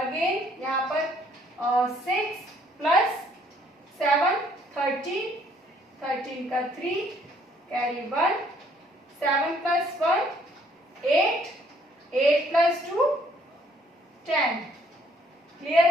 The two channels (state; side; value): normal; both; correlation 0.64